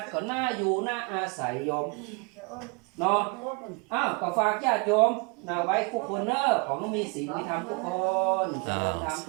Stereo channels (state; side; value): quieter; left; 31.7 dB